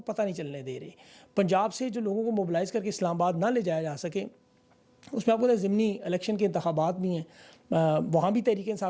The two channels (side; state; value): both; identical; correlation 1.00